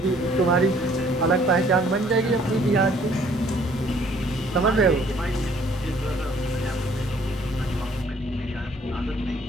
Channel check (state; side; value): normal; both; correlation 0.60